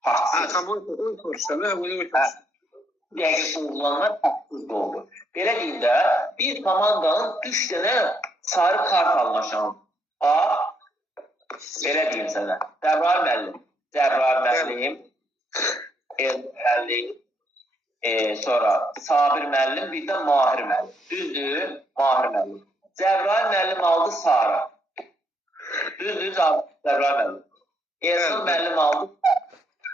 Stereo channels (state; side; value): normal; both; correlation 0.74